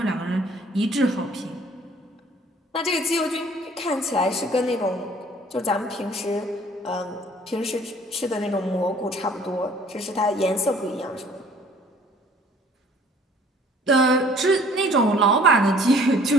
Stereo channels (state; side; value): normal; both; correlation 0.55